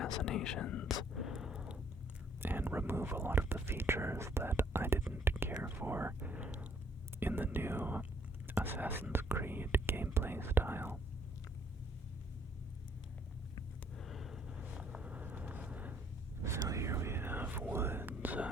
and remove a lot of the features that I didn't care for in the new Assassin's Creed gameplay style. So here we have woods.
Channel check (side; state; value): both; normal; correlation 0.66